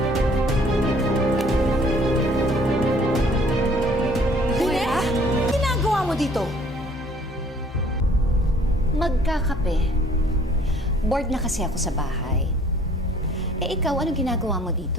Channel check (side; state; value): both; normal; correlation 0.56